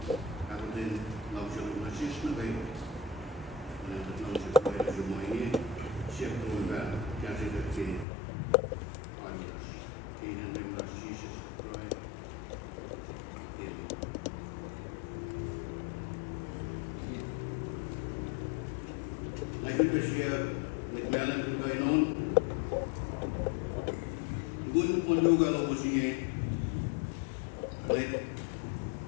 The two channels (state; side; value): drops out; right; at 8.1 s